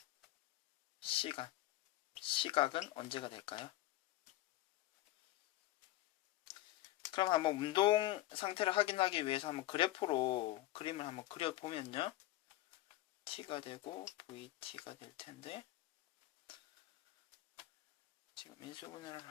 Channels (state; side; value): quieter; right; 15.9 dB